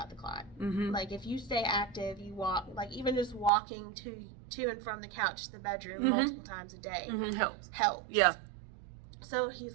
the clot. Mm-hmm. Like if you stay active, you walk, like even just walking to and from the couch to the bedroom multiple times a day Helps. Yeah. So he's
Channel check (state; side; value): drops out; left; at 3.5 s